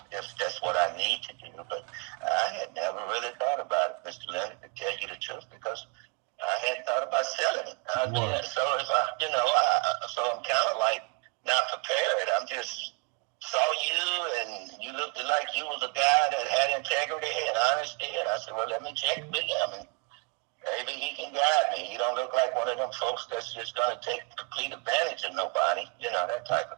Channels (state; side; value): quieter; left; 30.3 dB